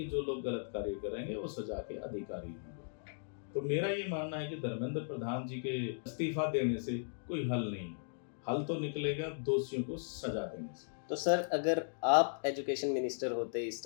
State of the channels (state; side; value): silent; right; digital silence